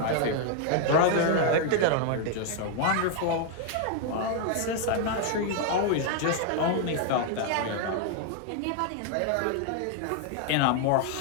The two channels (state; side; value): different; both; correlation 0.00